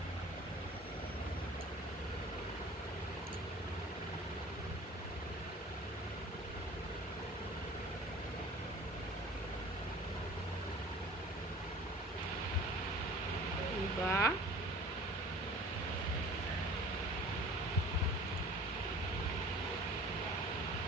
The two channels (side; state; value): both; normal; correlation 0.45